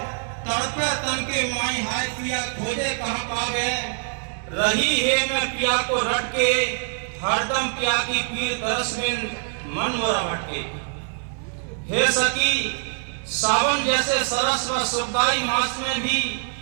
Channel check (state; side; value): silent; left; 63 dB below the other